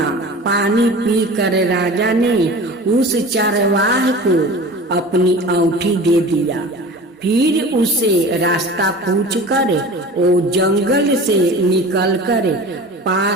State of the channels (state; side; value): normal; both; correlation 0.38